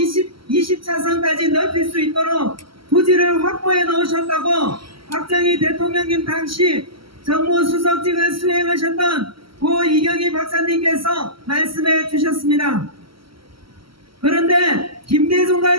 넓힐 수 있도록 부지를 확보해 놓으셨다고 박정희 대통령님 당시 정무수석직을 수행하셨던 고 이경희 박사님께서 말씀해 주셨습니다. 그런데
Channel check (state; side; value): late; left; 0.75 ms